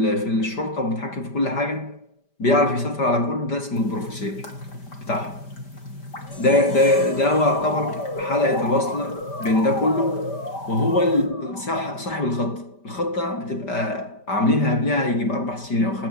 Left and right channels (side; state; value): right; late; 5.1 ms